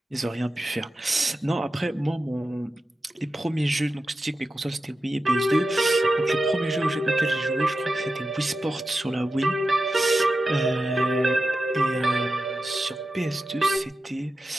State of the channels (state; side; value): normal; both; correlation 0.91